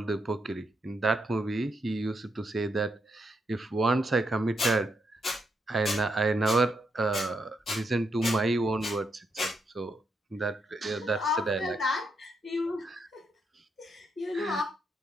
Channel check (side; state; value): both; normal; correlation 0.80